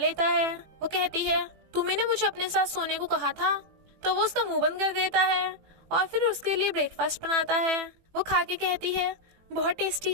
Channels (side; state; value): left; late; 18 ms